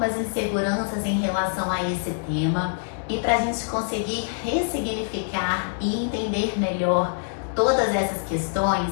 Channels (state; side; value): silent; right; digital silence